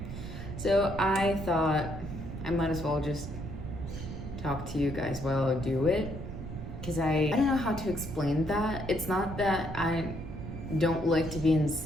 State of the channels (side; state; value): right; noise; rumble, 8 dB below the sound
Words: So I thought I might as well just talk to you guys while I do it. Because I don't know how to explain that. It's not that I don't like to be in